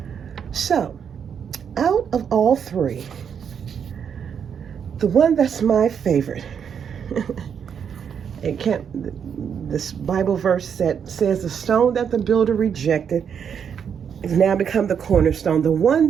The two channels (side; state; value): left; quieter; 7.5 dB